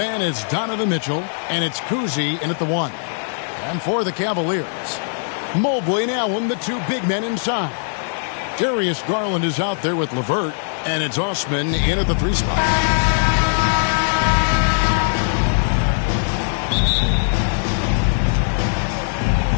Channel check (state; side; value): silent; right; digital silence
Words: it's Donovan Mitchell, and it's Cousy in at the 1. And for the Cavaliers, Mobley and Allen, the two big men inside. Darius Garland is out there with LeVert, and it's Osman in at the 3 spot.